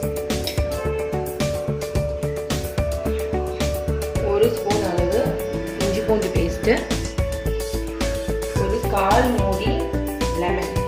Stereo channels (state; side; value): identical; both; correlation 1.00